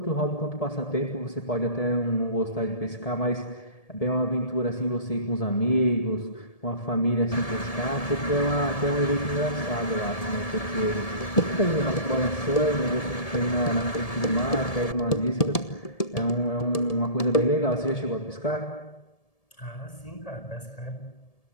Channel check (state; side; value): late; right; 1.7 ms